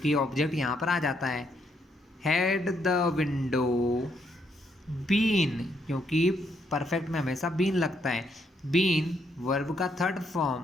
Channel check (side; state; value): both; normal; correlation 0.74